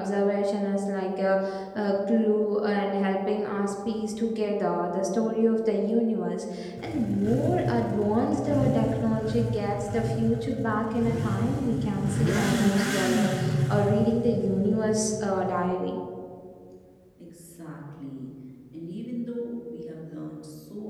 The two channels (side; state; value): both; identical; correlation 1.00